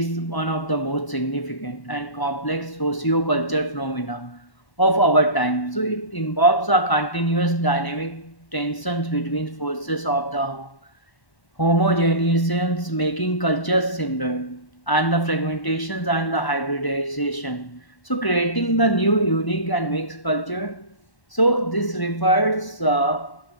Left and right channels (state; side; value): late; right; 1.0 ms